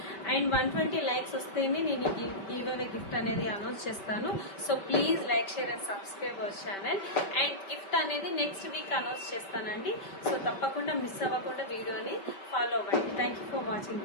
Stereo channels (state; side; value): late; right; 5.2 ms